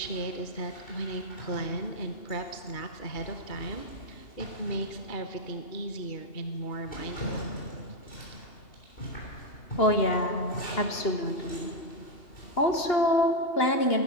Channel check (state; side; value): late; right; 2.8 ms